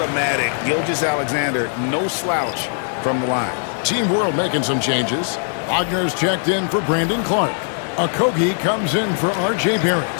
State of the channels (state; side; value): silent; right; 66 dB below the other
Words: Gilgeous Alexander, no slouch from the line. Team World making some changes. Wagner's checked in for Brandon Clark. Okogie comes in for R.J. Barrett.